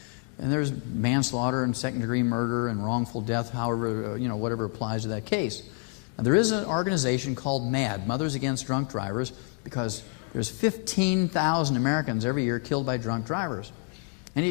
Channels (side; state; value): right; quieter; 33.2 dB